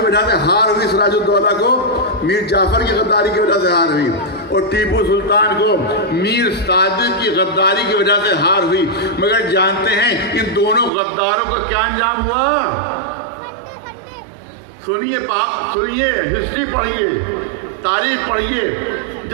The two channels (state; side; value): drops out; left; at 10.9 s